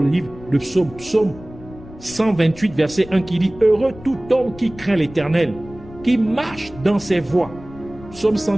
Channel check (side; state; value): left; noise; rumble, 18 dB below the sound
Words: livre de Psaume, Psaume 128, verset 1, qui dit « Heureux tout homme qui craint l'Éternel, qui marche dans ses voies. » Psaume